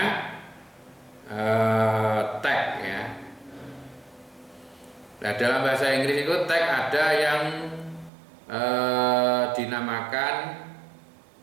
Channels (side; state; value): left; drops out; at 8.1 s